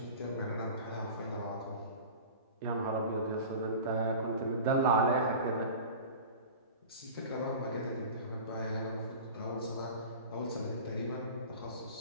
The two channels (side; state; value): both; inverted; correlation -0.36